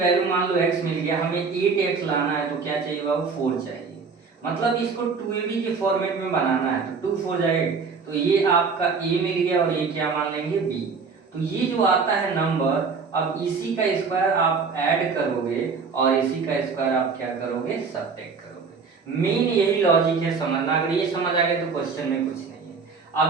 मान लो x मिल गया, हमें 8x लाना है तो क्या चाहिए बाबू, 4 चाहिए। मतलब इसको 2ab के फॉर्मेट में बनाना है तो 2 4 जाए, तो ये आपका a मिल गया और ये क्या मान लेंगे b। तो ये जो आता है नंबर, अब इसी का स्क्वायर आप ऐड करोगे और इसी का स्क्वायर आप क्या करोगे, सब्ट्रैक्ट करोगे। मेन यही लॉजिक है समझना। अगर ये समझ आ गया तो क्वेश्चन में कुछ नहीं।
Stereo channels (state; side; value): quieter; left; 5.1 dB